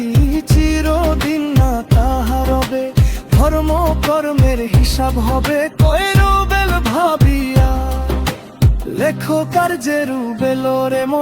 চিরদিন না তাহা রবে। ধর্ম কর্মের হিসাব হবে কয়রো বেল ভাবিয়া। লেখো কার্যের বেল রে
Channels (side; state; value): both; identical; correlation 1.00